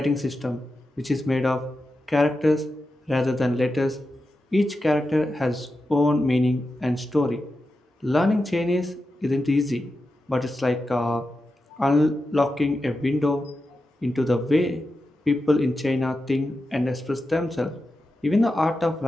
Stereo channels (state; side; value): normal; both; correlation 0.90